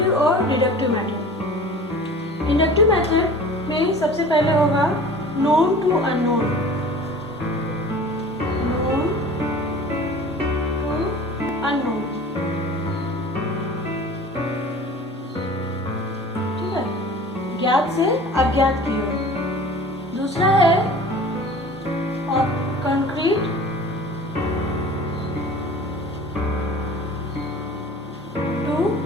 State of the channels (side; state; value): both; normal; correlation 0.42